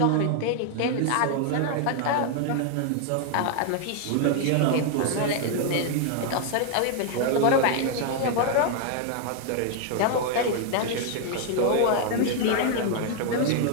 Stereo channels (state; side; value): different; both; correlation 0.00